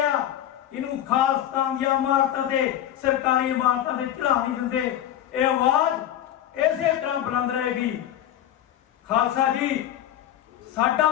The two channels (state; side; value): quieter; right; 11.6 dB